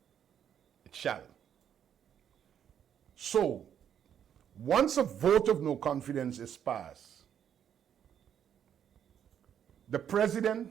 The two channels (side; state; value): left; quieter; 9.1 dB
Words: it shall. So, once a vote of no confidence is passed, The